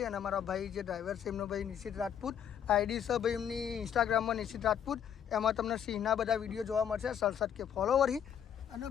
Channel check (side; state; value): right; quieter; 8.9 dB